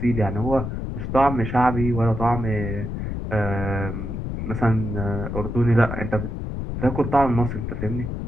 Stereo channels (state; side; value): noise; left; rumble, 4 dB below the sound